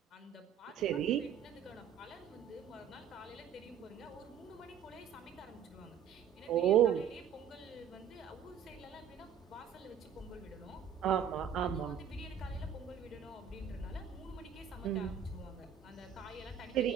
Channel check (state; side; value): quieter; left; 8.2 dB